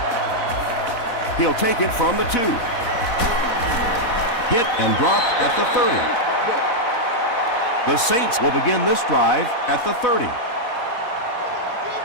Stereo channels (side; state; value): right; late; 4.1 ms